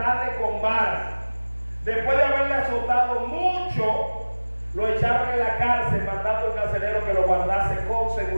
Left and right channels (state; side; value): inverted; both; correlation -1.00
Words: con varas. Después de haberle azotado mucho, lo echaron en la cárcel, mandando al carcelero que lo guardase con